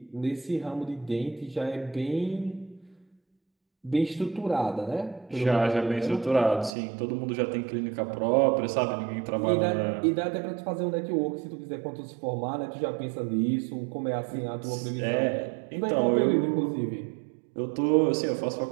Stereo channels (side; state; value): left; drops out; at 6.8 s